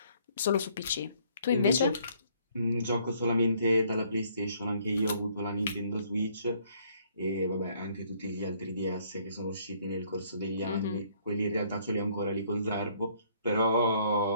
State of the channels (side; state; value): both; inverted; correlation -0.64